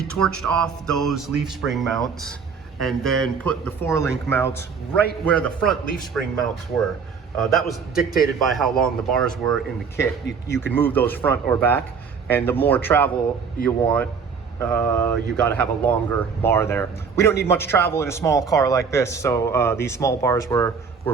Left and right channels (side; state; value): left; quieter; 5.9 dB